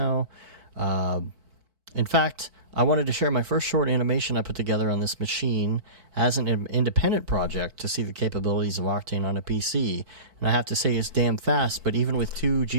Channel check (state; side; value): late; left; 4.6 ms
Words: In fact, I wanted to share my first short animation I put together on this machine as an independent project to see the capabilities of Octane on a PC. And I have to say it's damn fast, but even with 2